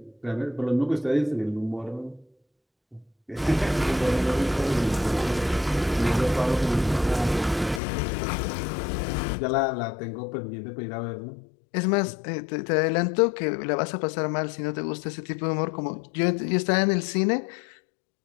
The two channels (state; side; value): drops out; right; at 7.8 s